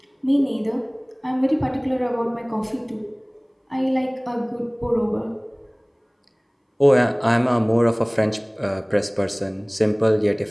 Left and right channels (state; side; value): identical; both; correlation 1.00